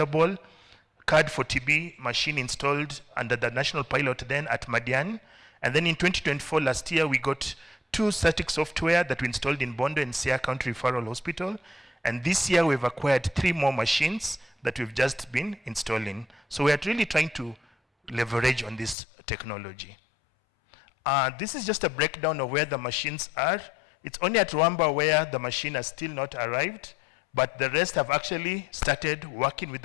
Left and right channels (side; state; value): right; drops out; at 18.9 s